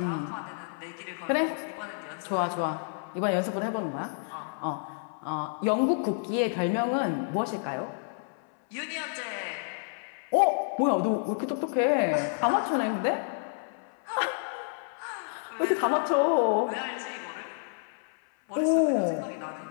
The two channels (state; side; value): silent; right; 58 dB below the other